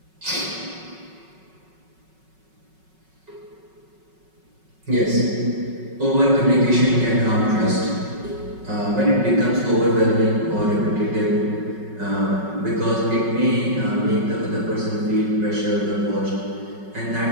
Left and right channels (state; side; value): late; left; 5.4 ms